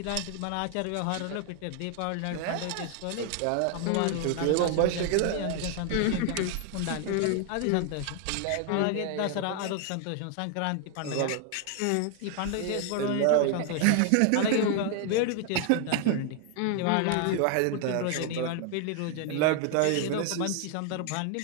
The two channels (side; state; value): both; different; correlation 0.00